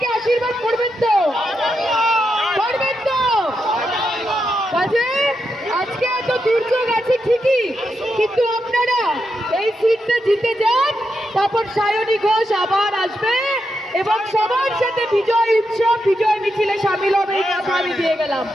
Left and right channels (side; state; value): both; normal; correlation 0.84